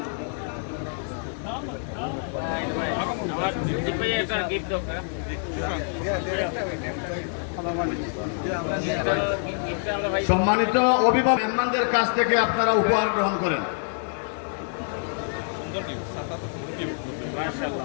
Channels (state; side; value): silent; right; 61 dB below the other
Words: সম্মানিত অভিভাবক মেহমানদের কাছ থেকে আপনারা উপহার গ্রহণ করেন।